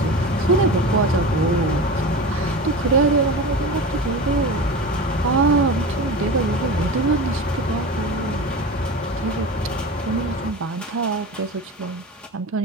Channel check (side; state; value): both; normal; correlation 0.29